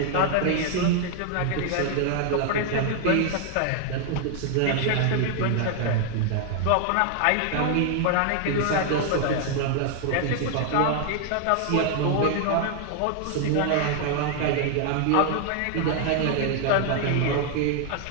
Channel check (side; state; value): both; different; correlation 0.00